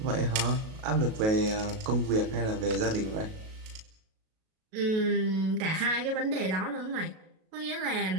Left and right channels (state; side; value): late; left; 37 ms